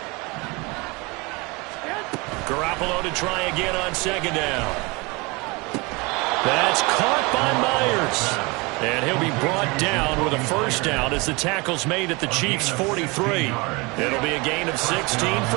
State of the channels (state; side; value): quieter; left; 26.4 dB